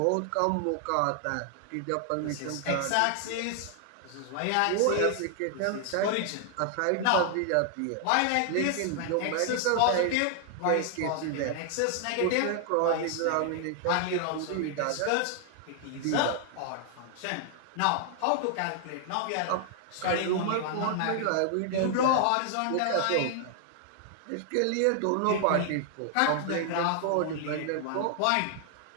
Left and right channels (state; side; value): different; both; correlation 0.00